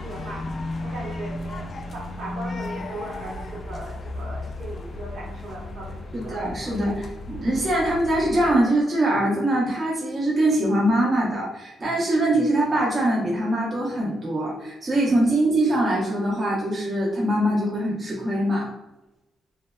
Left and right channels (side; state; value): both; normal; correlation 0.81